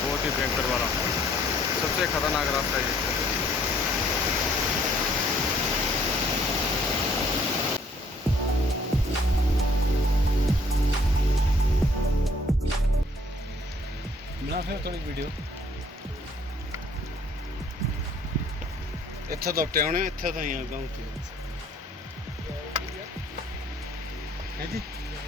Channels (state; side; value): normal; both; correlation 0.61